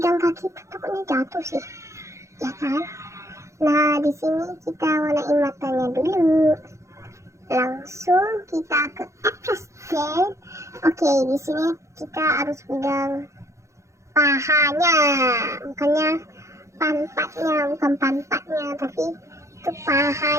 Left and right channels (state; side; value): late; left; 0.14 ms